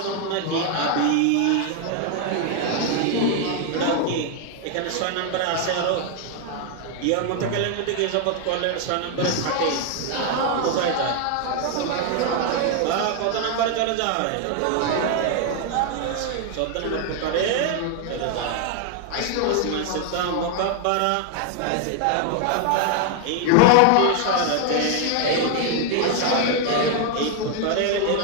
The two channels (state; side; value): different; both; correlation 0.00